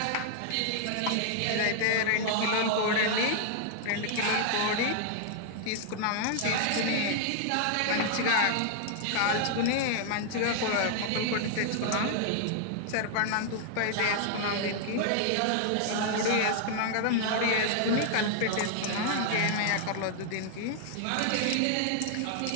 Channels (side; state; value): both; different; correlation 0.00